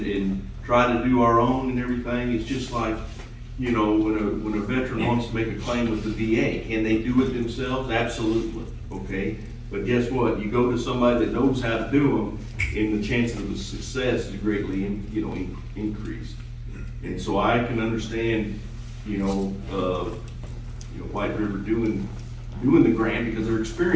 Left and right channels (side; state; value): both; identical; correlation 1.00